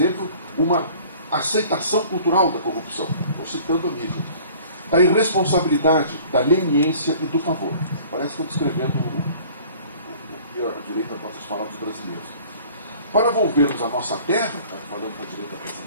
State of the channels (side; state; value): both; inverted; correlation -0.49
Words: uma aceitação cultural da corrupção, estou citando a mídia, da irresponsabilidade, da leniência e do favor. Parece que estão descrevendo o que a direita gosta de falar dos brasileiros. Para volvermos à nossa terra, falando da direita